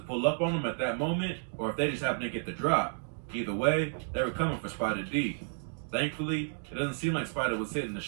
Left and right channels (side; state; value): left; silent; digital silence